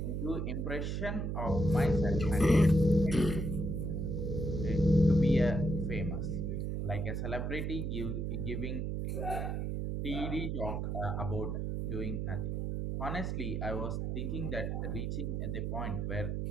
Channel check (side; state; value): right; noise; hum, 1 dB below the sound